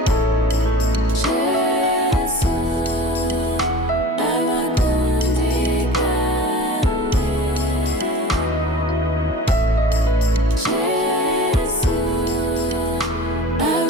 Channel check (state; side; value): normal; both; correlation 0.40